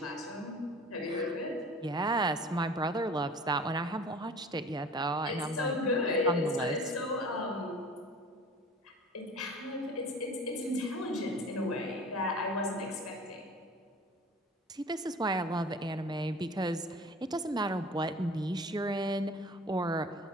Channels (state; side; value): normal; both; correlation 0.43